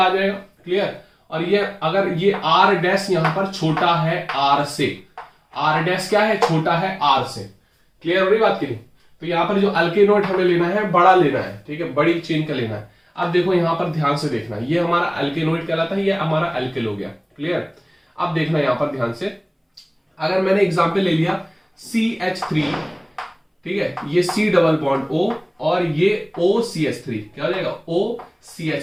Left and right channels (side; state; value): both; identical; correlation 1.00